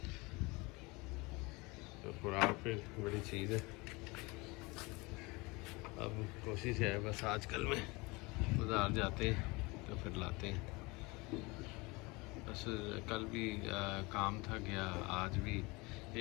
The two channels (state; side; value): quieter; right; 25.2 dB